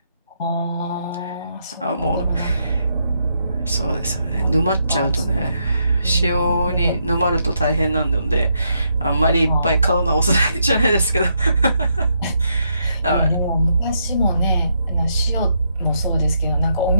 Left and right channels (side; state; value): both; inverted; correlation -0.78